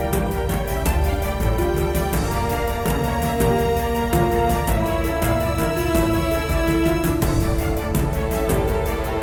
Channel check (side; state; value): both; identical; correlation 1.00